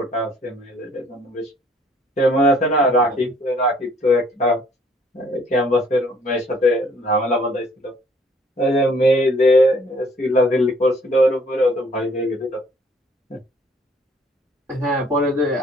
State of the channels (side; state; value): both; normal; correlation 0.61